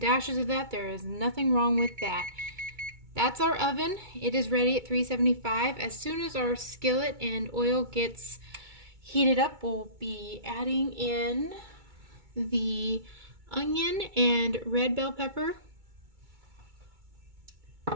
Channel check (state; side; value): late; left; 2.2 ms